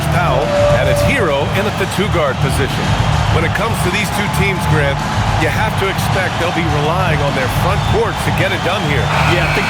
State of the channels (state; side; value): identical; both; correlation 1.00